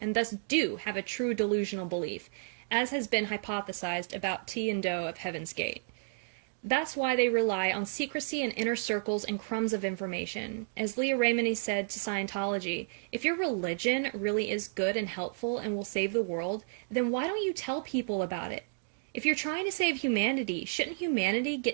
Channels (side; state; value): left; silent; digital silence